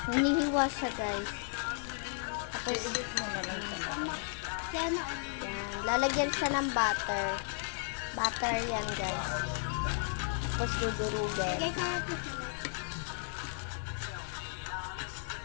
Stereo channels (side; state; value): right; silent; 55 dB below the other